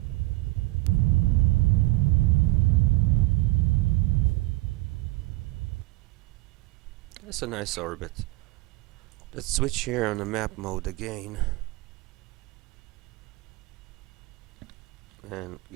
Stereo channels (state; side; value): quieter; left; 21.1 dB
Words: That's a nice orbit. Let's switch here on the map mode again and